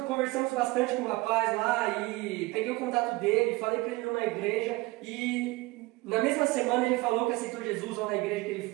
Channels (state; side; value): quieter; left; 22.0 dB